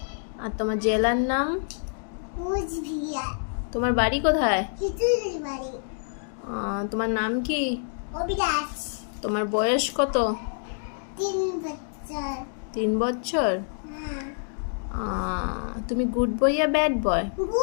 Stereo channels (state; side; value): silent; right; digital silence